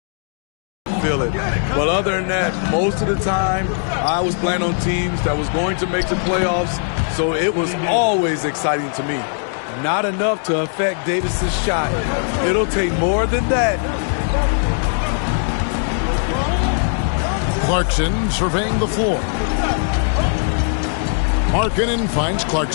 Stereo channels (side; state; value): right; silent; digital silence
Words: feel it. But other than that, most of the time, I was playing on teams that was going to make the playoffs, so it was always exciting to me. Not enough to affect Davis's shot. It'll take more than that. Clarkson surveying the floor. Markkanen finds